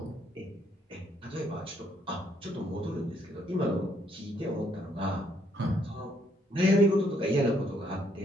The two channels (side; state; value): both; normal; correlation 0.70